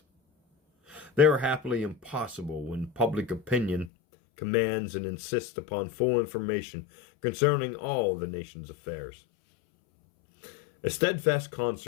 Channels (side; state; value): right; drops out; at 3.9 s